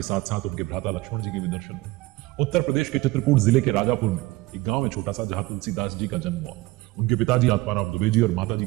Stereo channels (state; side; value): quieter; left; 19.9 dB